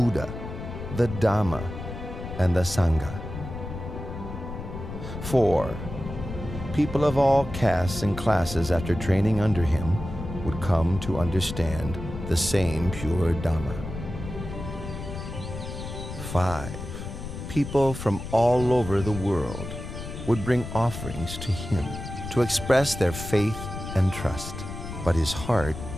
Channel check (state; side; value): noise; left; rumble, 9 dB below the sound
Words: the Dhamma, and the Sangha. 4. People of all castes and classes, after training under him, would come to understand the same pure Dhamma. 5. People from all over the world would bring offerings to him to express their faith and trust, but his heart